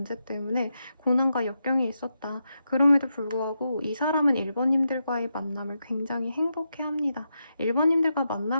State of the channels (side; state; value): both; inverted; correlation -0.86